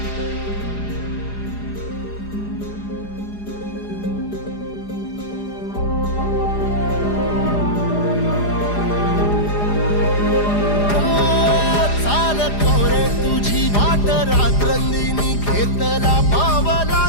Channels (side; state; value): right; late; 4.9 ms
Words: तुझी वाट रात्रंदिनी घेतला पावला